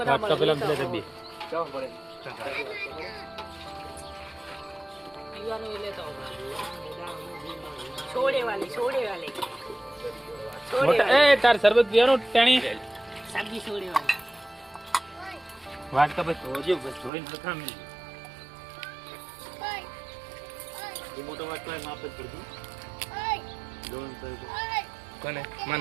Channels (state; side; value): drops out; left; at 17.1 s